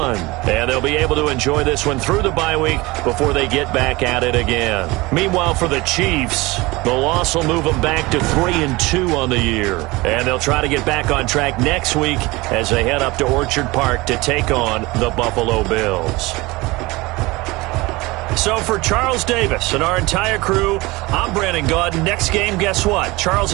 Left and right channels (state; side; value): quieter; left; 22.1 dB